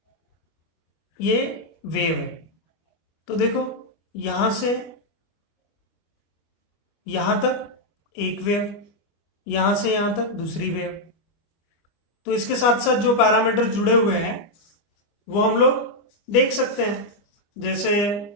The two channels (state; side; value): late; right; 25 ms